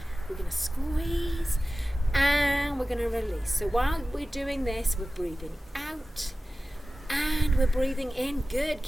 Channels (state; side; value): normal; both; correlation 0.96